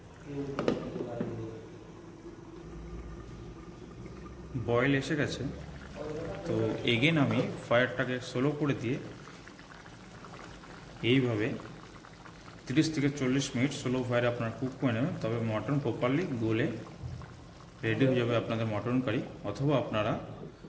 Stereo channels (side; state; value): both; identical; correlation 1.00